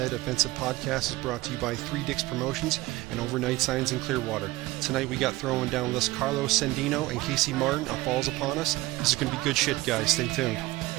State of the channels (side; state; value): left; quieter; 18.8 dB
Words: Offensive Podcast is brought to you by 3 Dicks Promotions and Overnight Signs in Clearwater. Tonight we got throwing down list Carlos Sandino and Casey Martin on Falls Upon Us. This is going to be good shit, guys. Stay tuned.